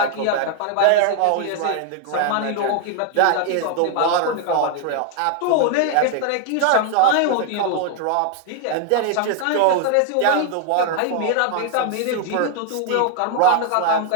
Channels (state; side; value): different; both; correlation 0.00